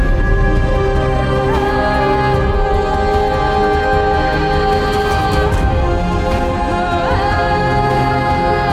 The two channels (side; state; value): both; identical; correlation 1.00